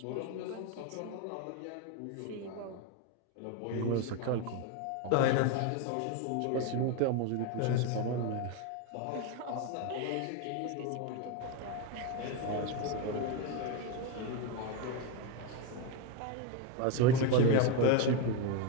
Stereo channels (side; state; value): both; different; correlation 0.02